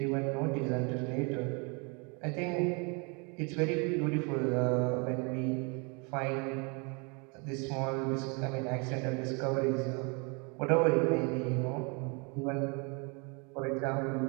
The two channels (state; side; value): quieter; left; 32.6 dB